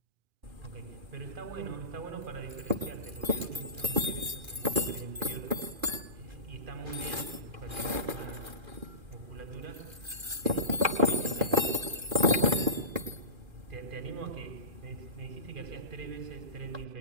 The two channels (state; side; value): late; left; 2.4 ms